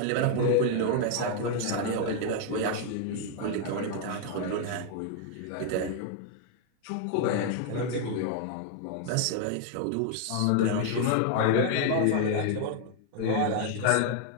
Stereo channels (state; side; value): different; both; correlation 0.00